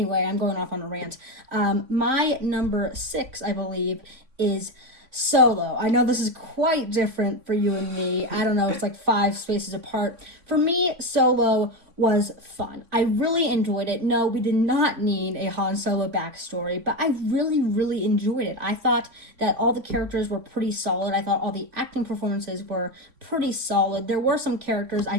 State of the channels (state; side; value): late; left; 3.6 ms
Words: I'm going off on a rant. My number 6, I believe, is Solo. I know this is quite different for you and me. I don't know, it's like 5 spaces apart. For me, Solo was fun. I really enjoyed it. No, we did not need a Han Solo backstory, but I really, really enjoyed it. I thought that all the characters were pretty solid. I thought all the acting performances were pretty solid. There were some characters I